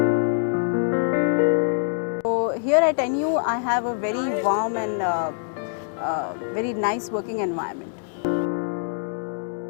So here at NIIT, I have a very warm and very nice working environment.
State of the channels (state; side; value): silent; right; digital silence